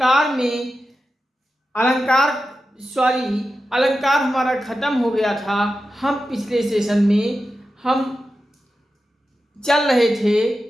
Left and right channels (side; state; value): both; normal; correlation 0.91